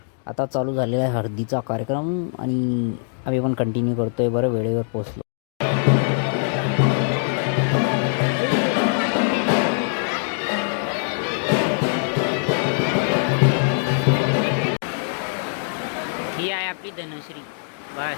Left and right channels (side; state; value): right; silent; digital silence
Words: आता चालू झालेला आहे हळदीचा कार्यक्रम आणि आम्ही पण कंटिन्यू करतोय. बरं वेळेवर पोचलो. ही आहे आपली धनश्री. बघा